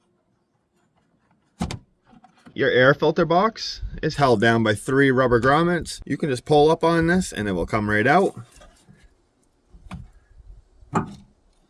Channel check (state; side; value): identical; both; correlation 1.00